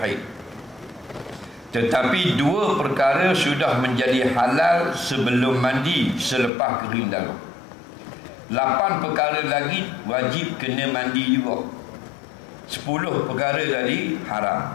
tetapi 2 perkara sudah menjadi halal sebelum mandi selepas kering darah. 8 perkara lagi wajib kena mandi juga. 10 perkara tadi haram.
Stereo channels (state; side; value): drops out; right; at 6.5 s